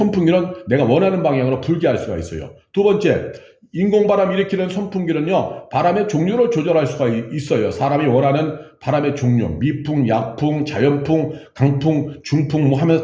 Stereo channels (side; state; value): both; identical; correlation 1.00